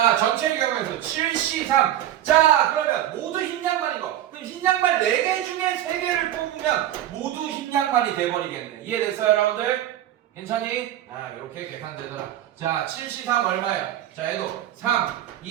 전체의 경우에서 7C3. 자, 그러면 모두 흰 양말인 거. 그럼 흰 양말 4개 중에 3개를 뽑으면 모두 흰 양말이 돼버리겠네. 이해됐어요, 여러분들? 괜찮니? 이렇게 계산되더라. 자, 7C3 얼마예요? 자, 얘도 3,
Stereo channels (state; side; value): quieter; left; 12.4 dB